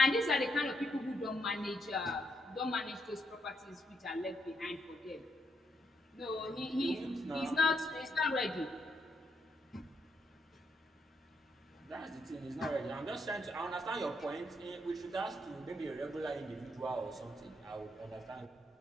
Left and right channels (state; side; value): normal; both; correlation 0.78